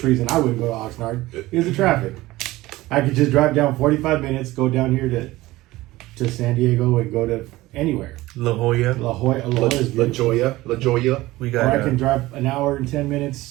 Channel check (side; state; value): left; quieter; 18.2 dB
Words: reason I wouldn't go to Oxnard is the traffic. I could just drive down 45 minutes, go down here to San Diego and go to anywhere. La Jolla. La is La beautiful. Jolla. We Or got. I can drive an hour and 10